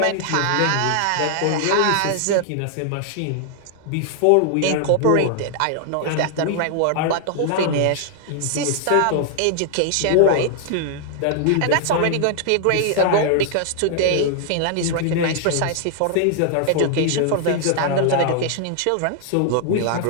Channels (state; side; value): different; both; correlation 0.00